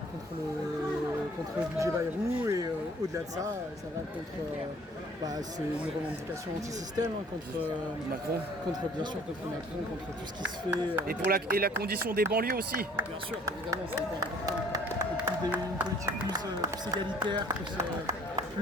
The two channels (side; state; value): both; normal; correlation 0.56